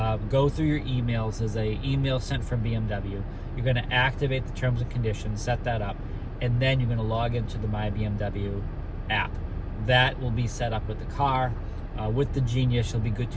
go through your emails. There's an email sent from BMW. You're going to activate the terms and conditions, set that up, and then you're going to log into the My BMW app. That will be set up with the car. With the Genius, you'll be good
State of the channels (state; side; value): identical; both; correlation 1.00